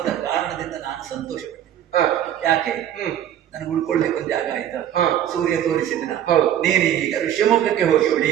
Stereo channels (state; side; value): quieter; left; 10.7 dB